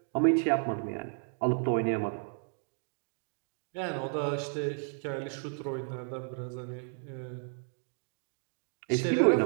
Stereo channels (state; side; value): silent; left; digital silence